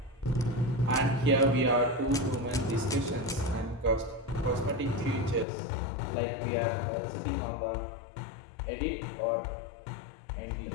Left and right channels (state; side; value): drops out; right; at 5.5 s